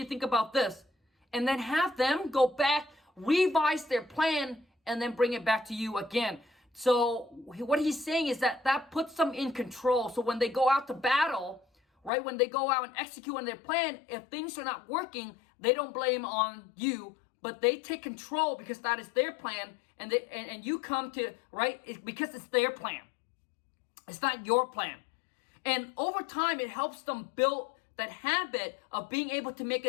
think about this? And then have them go back, revise their plan, and then bring it back to you again. So what he's saying is that puts them in control. So when they go out to battle, right, when they go out and execute on their plan, if things are not working, they don't blame on you, but they take control because that is their plan, and you come to, right, because it's their plan. It's not your plan. And over time, it helps them build that habit of being able to make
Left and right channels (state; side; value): drops out; right; at 12.1 s